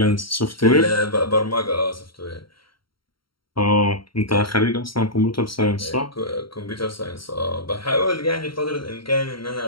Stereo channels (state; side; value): late; right; 0.74 ms